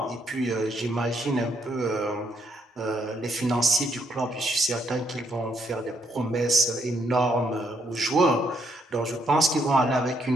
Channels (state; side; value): normal; both; correlation 0.74